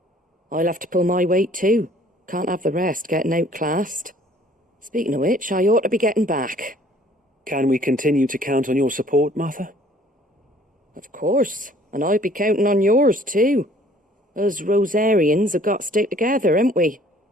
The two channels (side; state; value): both; normal; correlation 0.56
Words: I'll have to pull my weight too. Can't have the rest getting outclassed. Speaking of which, I ought to be getting back. Can we continue to count on your support, Martha? Of course, and I'll be counting on yours too. Us Rosarians have got to stick together, haven't we?